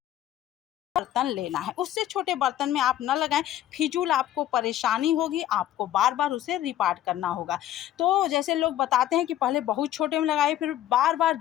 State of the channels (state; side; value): quieter; right; 12.5 dB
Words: बर्तन लेना है, उससे छोटे बर्तन में आप न लगाएं। फिजूल आपको परेशानी होगी, आपको बार बार उसे रिपार्ट करना होगा। तो जैसे लोग बताते हैं कि पहले बहुत छोटे में लगाए, फिर बार बार